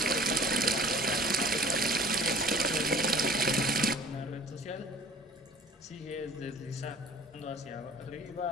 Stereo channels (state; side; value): normal; both; correlation 0.47